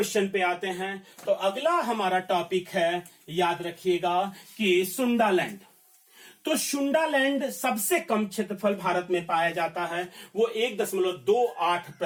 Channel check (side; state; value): both; identical; correlation 1.00